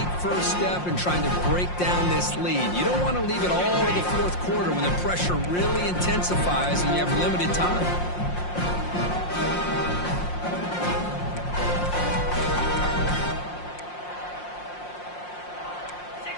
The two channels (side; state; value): right; late; 5.6 ms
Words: first step in trying to break down this lead. You don't want to leave it all to the 4th quarter when the pressure really intensifies and you have limited time.